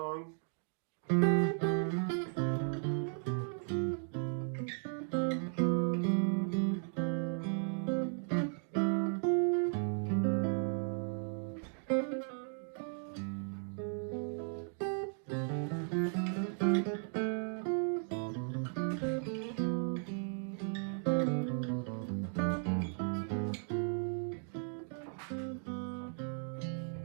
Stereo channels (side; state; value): left; silent; 54 dB below the other